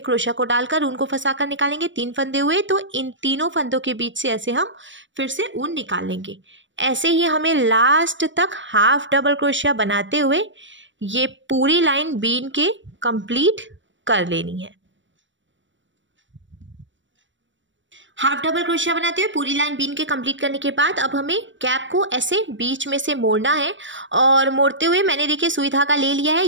क्रोशिया को डालकर ऊन को फंसाकर निकालेंगे। 3 फंदे हुए तो इन तीनों फंदों के बीच से ऐसे हम फिर से ऊन निकाल लेंगे। ऐसे ही हमें लास्ट तक हाफ डबल क्रोशिया बनाते हुए ये पूरी लाइन बीन के कंप्लीट कर लेनी है। हाफ डबल क्रोशिया बनाते हुए पूरी लाइन बीन के कंप्लीट करने के बाद अब हमें कैप को ऐसे बीच में से मोड़ना है और मोड़ते हुए मैंने देखिए सुई धागा ले लिया है,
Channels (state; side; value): late; left; 0.55 ms